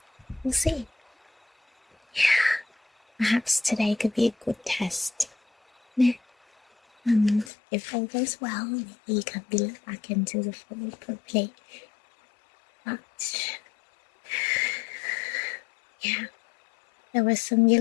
we'll see. Yeah, perhaps today could be a good test. Yeah. And if all goes well, maybe you can be let back into the fold properly. But, yeah, there were some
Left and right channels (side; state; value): right; drops out; at 7.5 s